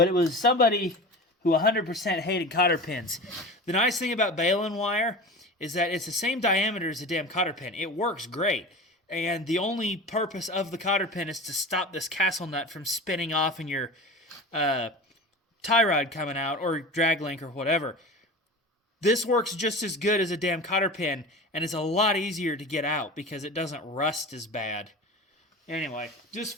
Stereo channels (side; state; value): both; normal; correlation 0.32